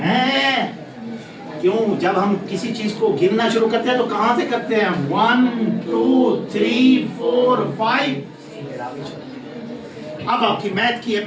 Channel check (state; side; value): identical; both; correlation 1.00